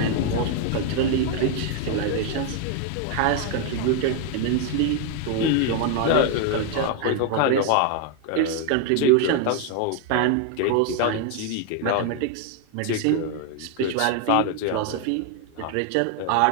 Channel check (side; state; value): both; different; correlation 0.01